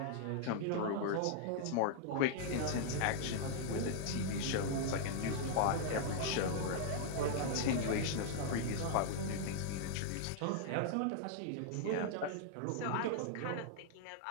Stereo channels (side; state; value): both; different; correlation -0.01